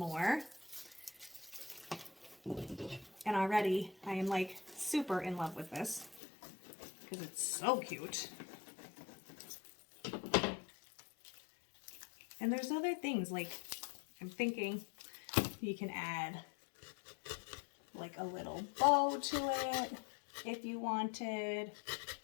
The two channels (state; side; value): drops out; right; at 6.2 s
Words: And already I am like super in love with this because it's so cute. And there's other things, like I'm thinking you can add like a little bow to it if you wanted.